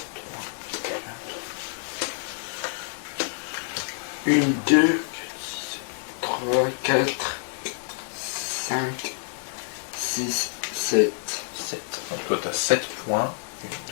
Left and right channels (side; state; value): right; silent; digital silence